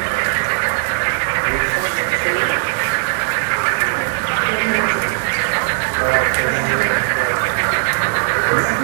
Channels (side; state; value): left; silent; digital silence